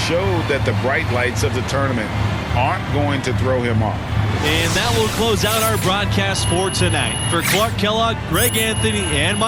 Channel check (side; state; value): both; identical; correlation 1.00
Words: showed that the bright lights of the tournament aren't going to throw him off. And that will close out our broadcast for tonight. For Clark Kellogg, Greg Anthony, and